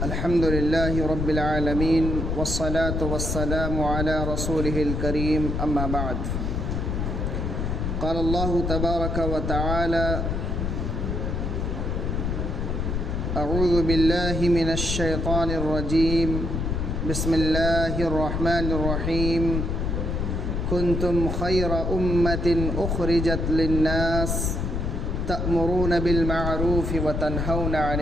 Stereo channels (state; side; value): noise; left; rumble, 1 dB below the sound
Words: الحمد للہ رب العالمین والصلاة والسلام علی رسولہ الکریم، اما بعد۔ قال اللہ تبارک وتعالی: اعوذ باللہ من الشیطان الرجیم، بسم اللہ الرحمن الرحیم۔ کنتم خیر امۃ اخرجت للناس تأمرون بالمعروف وتنہون عن